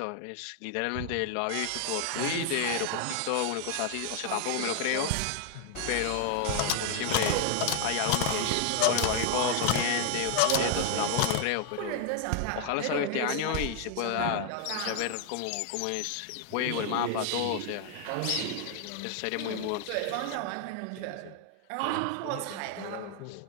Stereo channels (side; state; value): both; different; correlation 0.00